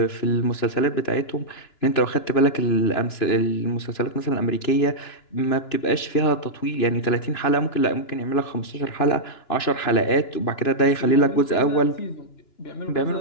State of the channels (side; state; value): right; late; 2.9 ms